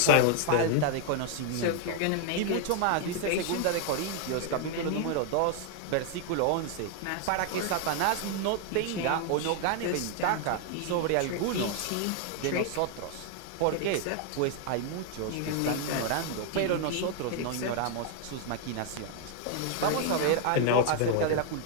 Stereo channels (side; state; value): both; different; correlation 0.01